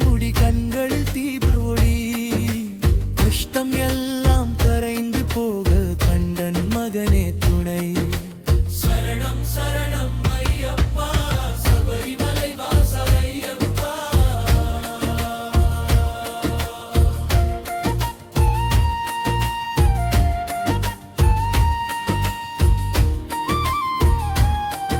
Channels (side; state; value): both; identical; correlation 1.00